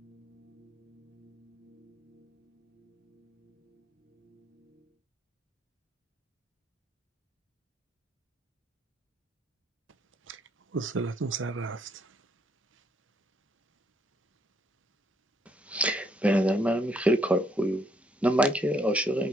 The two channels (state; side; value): normal; both; correlation 0.70